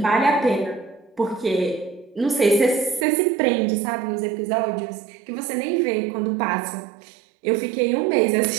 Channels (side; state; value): left; drops out; at 3.1 s